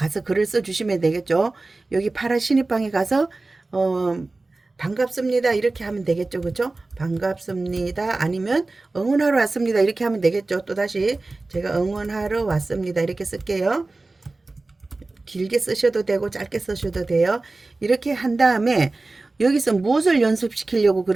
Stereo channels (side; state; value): left; quieter; 3.3 dB